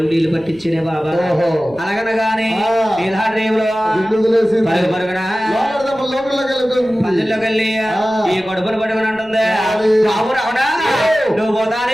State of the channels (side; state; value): right; noise; rumble, 25 dB below the sound